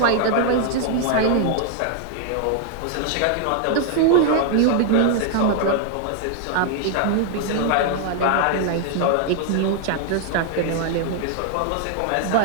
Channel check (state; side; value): different; both; correlation 0.00